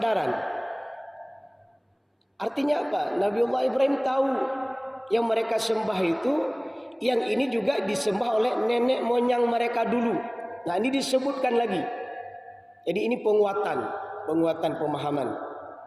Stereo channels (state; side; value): identical; both; correlation 1.00